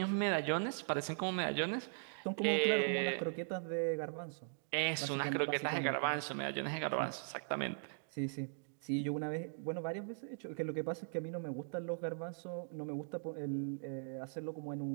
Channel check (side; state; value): left; silent; digital silence